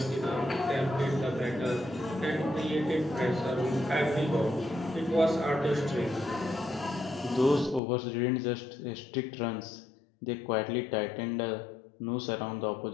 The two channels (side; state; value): right; drops out; at 7.8 s